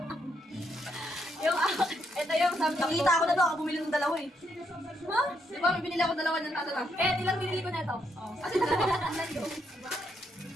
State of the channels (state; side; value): normal; both; correlation 0.76